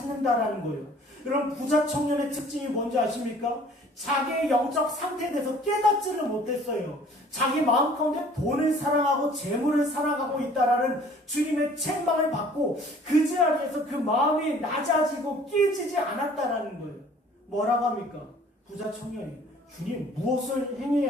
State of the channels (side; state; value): both; normal; correlation 0.53